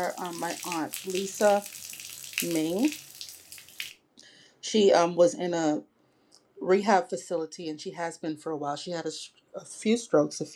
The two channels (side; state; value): both; identical; correlation 1.00